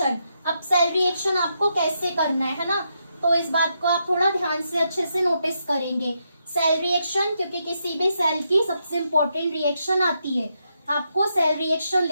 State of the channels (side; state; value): both; inverted; correlation -0.81